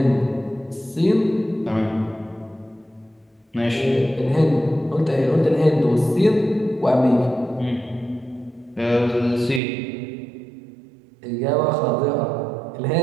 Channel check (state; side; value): drops out; left; at 9.6 s